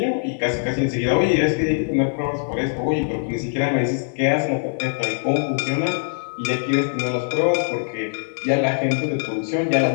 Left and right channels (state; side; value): silent; right; digital silence